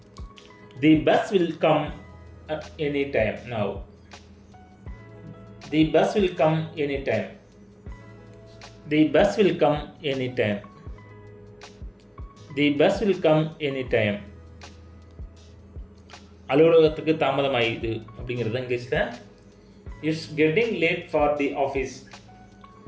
தி bus will come any time now. The bus will come any time. The bus will come anytime. The bus will come anytime. அலுவலகத்துக்கு தாமதமாயிடுது அப்படிங்கிறது இங்கிலீஷில் it's getting late for the office.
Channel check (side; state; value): both; identical; correlation 1.00